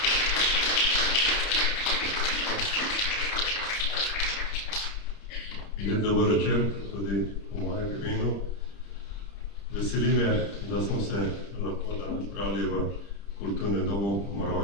Lep dober večer, tudi v mojem imenu. Veseli me, da smo se lahko danes zbrali v kulturnem domu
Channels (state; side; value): late; right; 30 ms